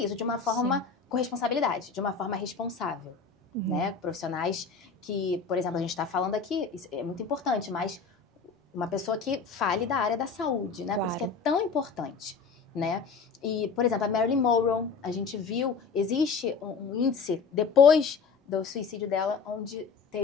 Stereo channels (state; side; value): quieter; right; 5.2 dB